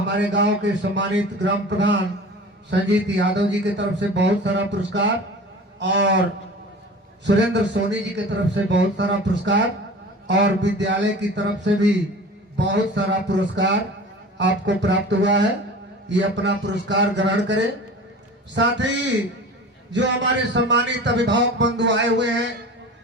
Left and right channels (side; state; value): both; normal; correlation 0.38